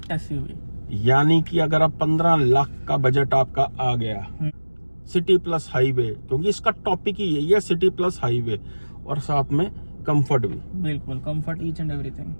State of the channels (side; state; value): both; inverted; correlation -1.00